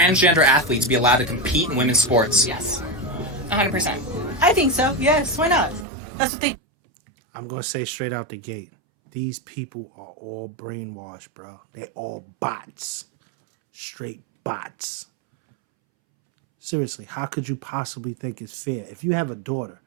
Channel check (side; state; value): left; drops out; at 5.9 s